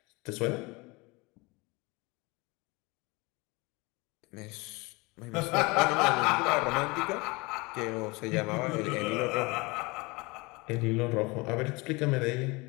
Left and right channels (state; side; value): quieter; right; 25.4 dB